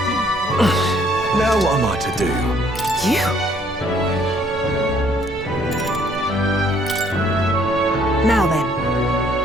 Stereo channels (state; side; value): normal; both; correlation 0.64